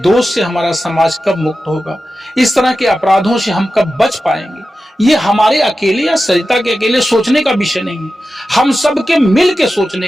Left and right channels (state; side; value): normal; both; correlation 0.93